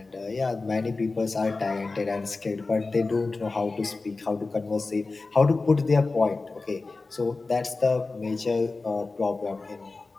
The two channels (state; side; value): quieter; right; 3.7 dB